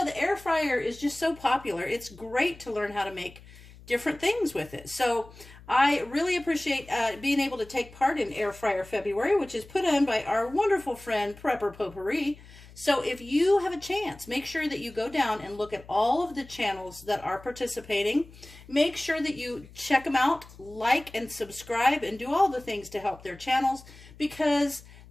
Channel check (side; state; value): left; noise; hum, 21 dB below the sound